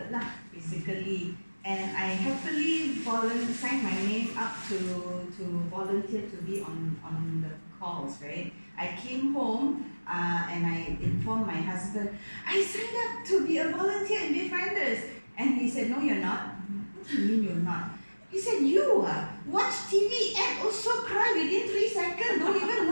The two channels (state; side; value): inverted; both; correlation -1.00